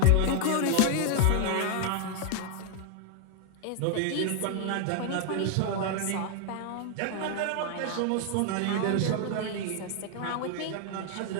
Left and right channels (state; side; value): different; both; correlation 0.00